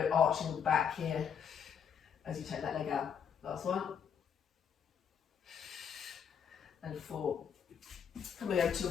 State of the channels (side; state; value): right; quieter; 7.6 dB